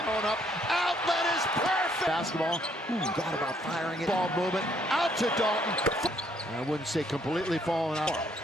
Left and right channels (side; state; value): both; normal; correlation 0.68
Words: up. Outlet is perfect. Basketball. Thought about firing it. Ball movement out to Dalton. I wouldn't say completely falling out.